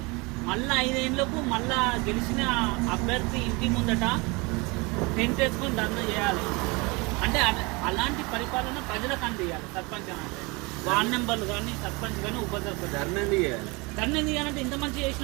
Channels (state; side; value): quieter; left; 26.9 dB